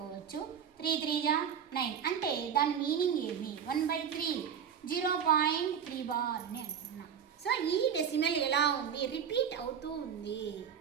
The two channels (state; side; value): quieter; left; 7.9 dB